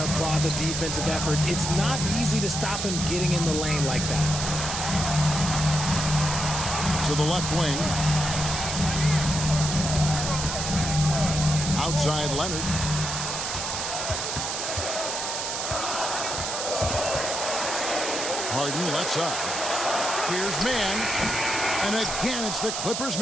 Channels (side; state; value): right; noise; hiss, 3 dB below the sound